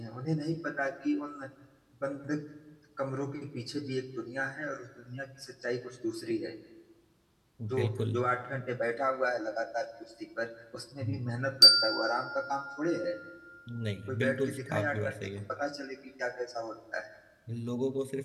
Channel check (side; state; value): both; identical; correlation 1.00